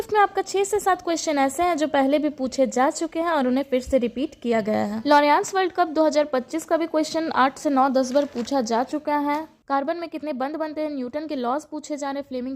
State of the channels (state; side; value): identical; both; correlation 1.00